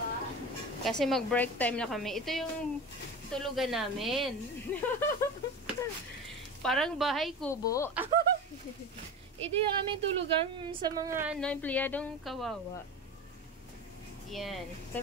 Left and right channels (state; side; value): normal; both; correlation 0.29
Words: Kasi mag-break time na kami. Ito yung tulugan namin. Parang bahay kubo. Ito yung aming tulugan sa mga empleyadong kawawa. Yan.